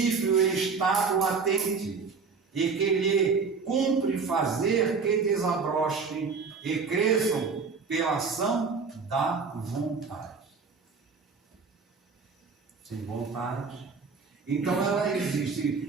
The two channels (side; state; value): left; quieter; 5.0 dB